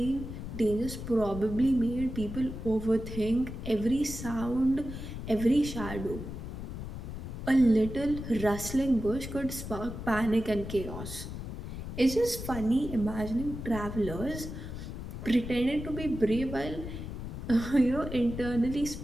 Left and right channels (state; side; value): noise; left; rumble, 8 dB below the sound